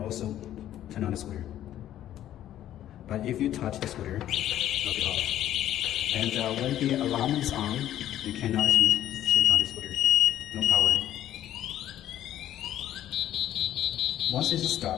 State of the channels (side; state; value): right; quieter; 12.2 dB